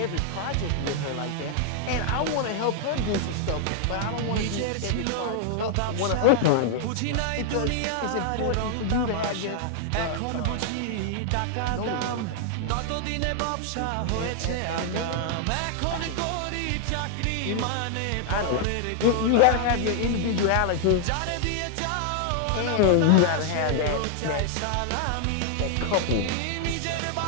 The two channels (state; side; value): different; both; correlation 0.00